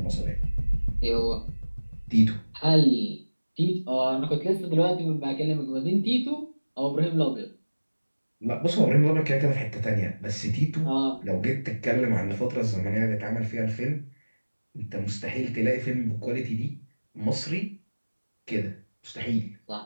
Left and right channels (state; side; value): inverted; both; correlation -1.00